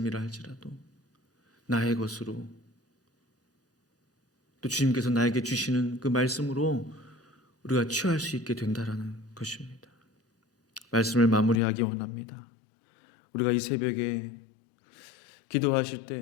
할지라도 나의 것으로, 또 주님께서 나에게 주시는 그 말씀으로 우리가 취할 수 있게 된다라는 것입니다. 말씀을 마무리하기 원합니다. 우리가 이 새벽에 기도하실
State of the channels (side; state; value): right; drops out; at 11.6 s